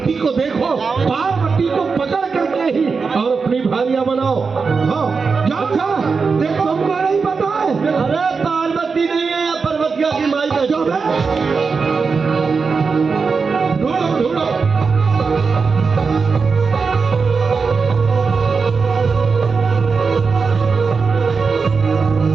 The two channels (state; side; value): quieter; left; 5.0 dB